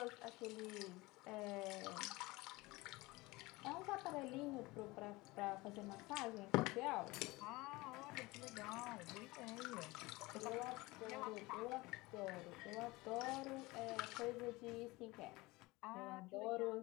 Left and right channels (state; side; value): quieter; right; 21.8 dB